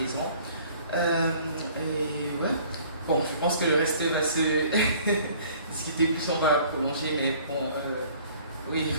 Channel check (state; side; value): inverted; both; correlation -0.54